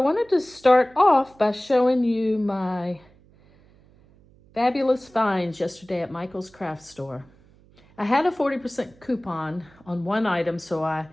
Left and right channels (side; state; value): right; noise; hum, 28 dB below the sound